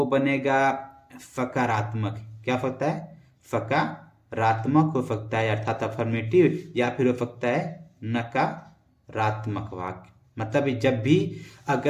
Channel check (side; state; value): both; identical; correlation 1.00